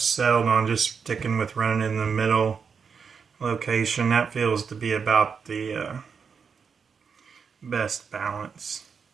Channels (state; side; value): quieter; left; 6.1 dB